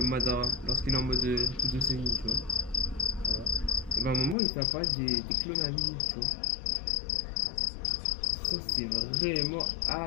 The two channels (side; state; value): right; drops out; at 4.4 s